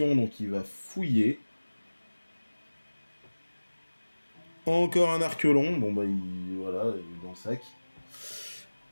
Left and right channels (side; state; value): both; inverted; correlation -1.00